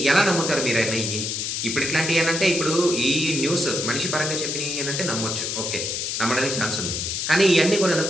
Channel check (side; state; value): left; noise; hiss, 2 dB below the sound